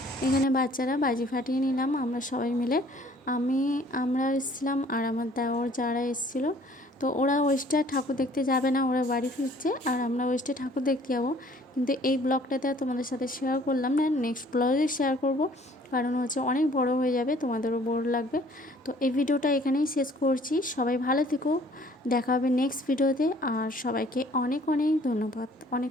এখানে বাচ্চারা বাজি ফাটিয়ে নিলাম আমরা সবাই মিলে। আমরা এসেছিলাম আর আমার দেওর যারা এসেছিল, তো ওরা ওয়েস্টে ঠাকুর দেখতে যাবে না, ওরা বাড়ি ফিরছে আর আমরা ওয়েস্টে ঠাকুর দেখতে যাবো। কিন্তু এই ব্লগটাতে তোমাদের সাথে শেয়ার করলাম না, নেক্সট ব্লগে শেয়ার করব, কারণ হচ্ছে অনেক বড় হয়ে যাবে, তোমাদেরও বোর লাগবে। তো এই ভিডিওটা এখানেই শেষ করছি। সবাই ভালো থেকো, দেখা হবে নেক্সট ভিডিওতে। আর সবাইকে অনেক অনেক ধন্যবাদ,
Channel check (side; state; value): both; normal; correlation 0.56